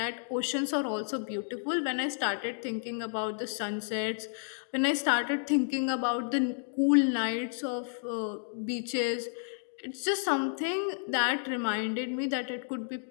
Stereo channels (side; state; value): right; silent; digital silence